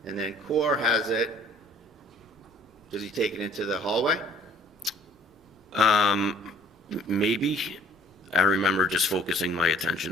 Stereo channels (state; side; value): normal; both; correlation 0.55